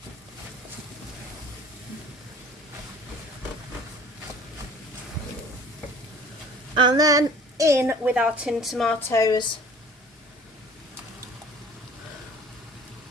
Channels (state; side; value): normal; both; correlation 0.48